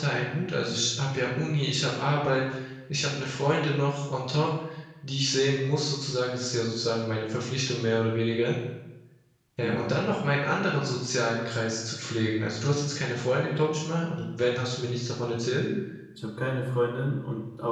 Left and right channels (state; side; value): identical; both; correlation 1.00